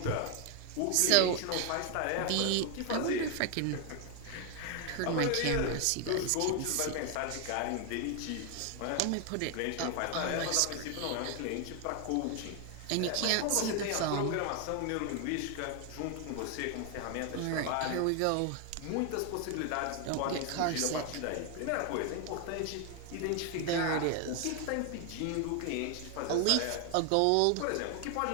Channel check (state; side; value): different; both; correlation 0.01